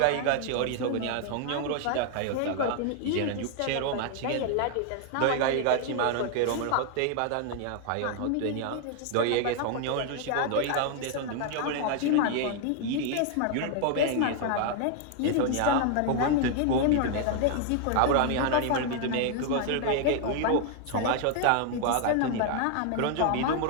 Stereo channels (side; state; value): both; different; correlation 0.00